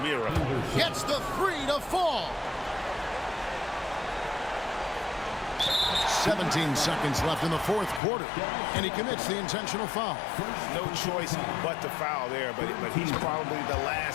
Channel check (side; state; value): right; drops out; at 8.0 s